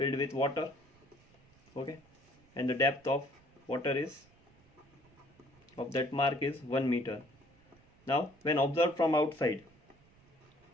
with water. Okay, and the depth of water is of that mark is 1 meter. Now when observed from outside,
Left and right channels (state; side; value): noise; right; rumble, 29 dB below the sound